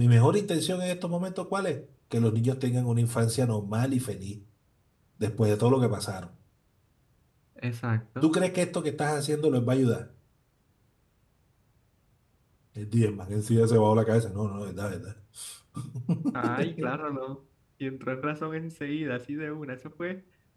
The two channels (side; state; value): both; identical; correlation 1.00